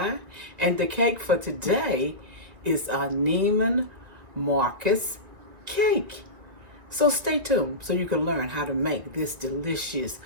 And the cake for today is a Neiman Marcus Cake. So stay tuned so you can learn how to make this delicious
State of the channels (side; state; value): left; late; 1.9 ms